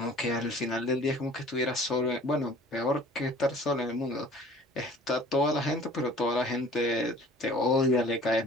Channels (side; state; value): both; normal; correlation 0.49